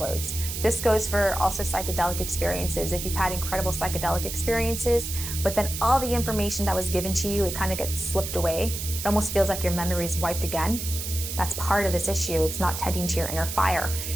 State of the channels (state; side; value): noise; right; hiss, 6 dB below the sound